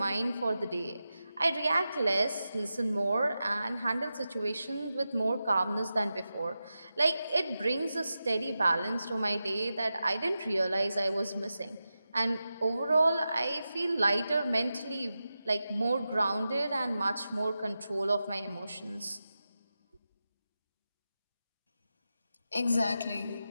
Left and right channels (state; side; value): inverted; both; correlation -0.92